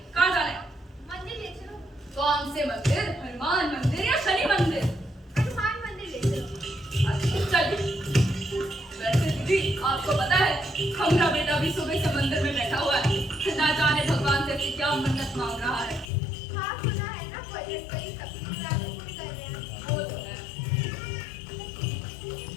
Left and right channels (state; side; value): drops out; right; at 16.1 s